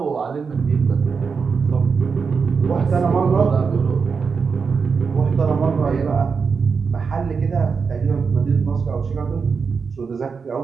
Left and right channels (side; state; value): left; quieter; 5.4 dB